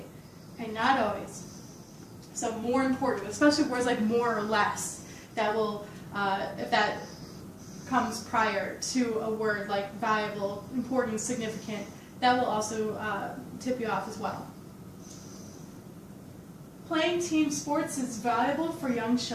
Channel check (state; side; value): identical; both; correlation 1.00